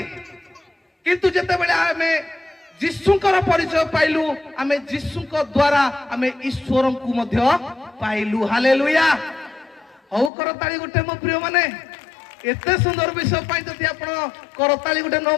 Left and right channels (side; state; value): right; drops out; at 10.3 s